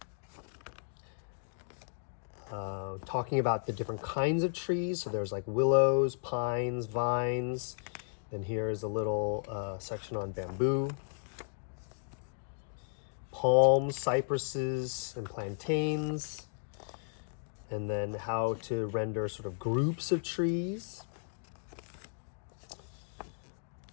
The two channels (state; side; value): silent; right; digital silence